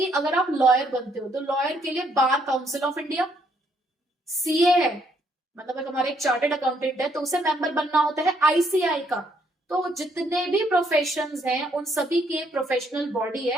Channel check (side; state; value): both; normal; correlation 0.70